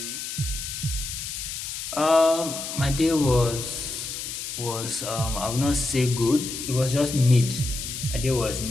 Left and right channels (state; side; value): noise; left; hiss, 6 dB below the sound